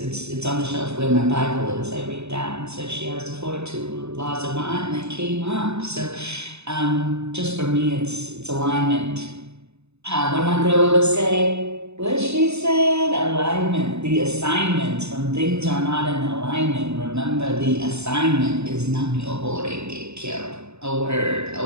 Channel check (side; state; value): left; late; 0.80 ms